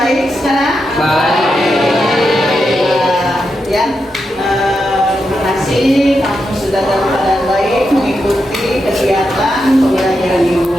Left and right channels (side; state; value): both; normal; correlation 0.86